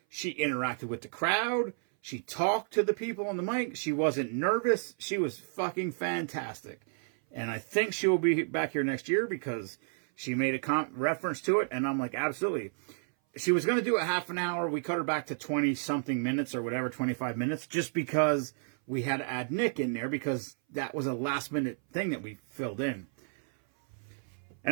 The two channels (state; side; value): silent; left; 57 dB below the other